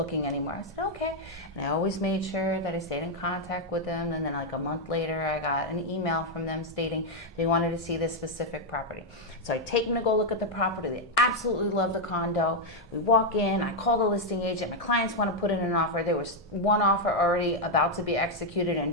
anymore. I said, okay. And I always made sure that I stayed in contact with them. And then like a month later, I got an email from them stating they wanted to see this specific property. So I take them to go look at the property. They absolutely love the condo. We walk in, I call the listing agent. My clients want to put in an offer. There was one offer already about to be executed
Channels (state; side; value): normal; both; correlation 0.00